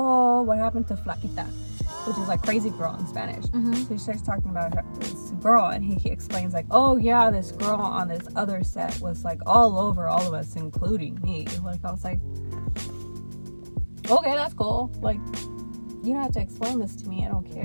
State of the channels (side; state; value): both; inverted; correlation -1.00